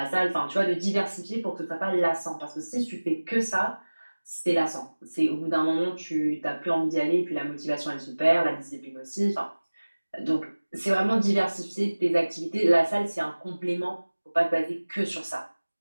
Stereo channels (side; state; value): both; inverted; correlation -1.00